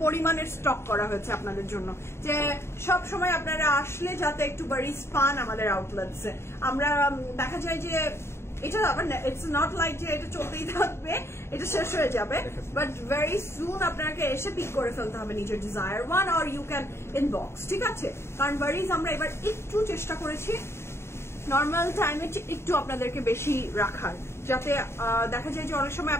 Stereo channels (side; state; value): right; late; 0.12 ms